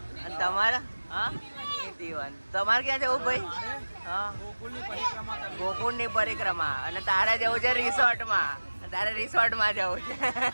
અને તમારે? હા, તમારે ક્યાં જવું ભાઈ? હા, ગોકુળની પરિક્રમા. અને તારે જવું છે રિસોર્ટમાં. તારે રિસોર્ટમાં જવું છે.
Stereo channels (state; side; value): inverted; both; correlation -1.00